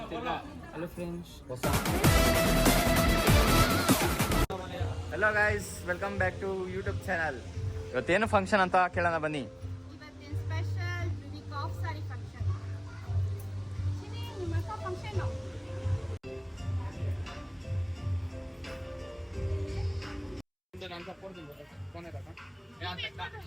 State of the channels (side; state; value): both; identical; correlation 1.00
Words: Hello friends, hello guys, welcome back to YouTube channel. ಇವತ್ತೇನು ಫಂಕ್ಷನ್ ಅಂತ ಕೇಳೋಣ ಬನ್ನಿ. ಇವತ್ತಿನ special unique of sari function. ನಿಮ್ಮ ಅಕ್ಕ ಫಂಕ್ಷನ್